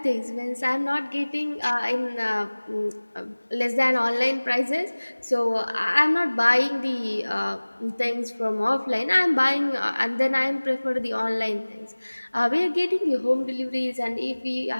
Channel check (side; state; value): both; inverted; correlation -1.00